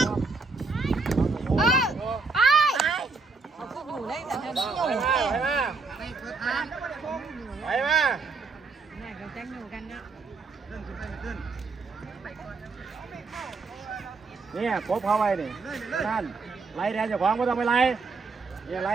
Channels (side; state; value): left; quieter; 4.2 dB